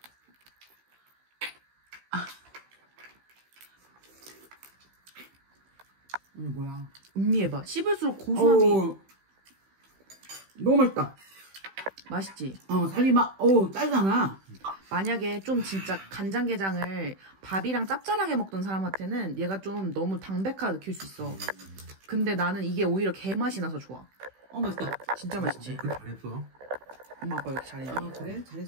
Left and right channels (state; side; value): late; left; 16 ms